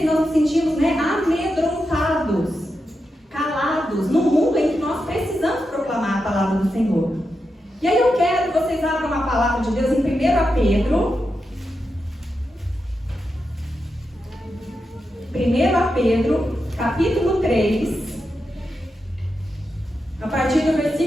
nós nos sentimos, né, amedrontados, calados, no mundo em que nós precisamos proclamar a palavra do Senhor. E aí eu quero que vocês abram a palavra de Deus em 1 Pedro. 1 Pedro, capítulo 3, a partir do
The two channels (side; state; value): both; normal; correlation 0.87